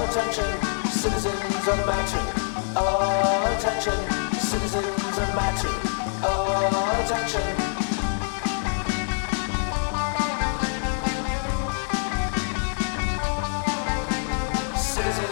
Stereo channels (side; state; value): right; silent; 62 dB below the other